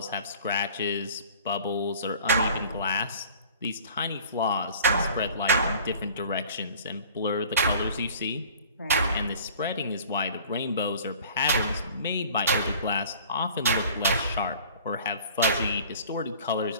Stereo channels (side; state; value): both; inverted; correlation -0.47